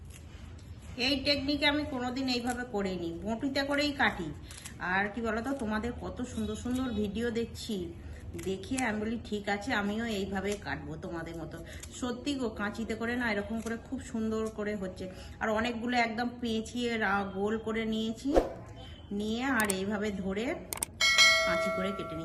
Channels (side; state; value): both; identical; correlation 1.00